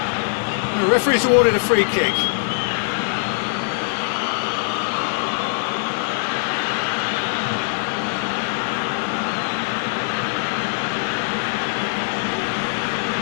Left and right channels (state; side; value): silent; right; digital silence